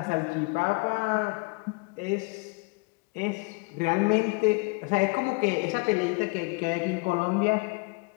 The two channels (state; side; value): quieter; right; 29.8 dB